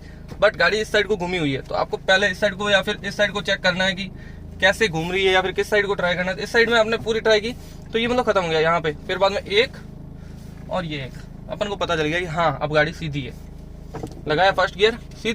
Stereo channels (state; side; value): identical; both; correlation 1.00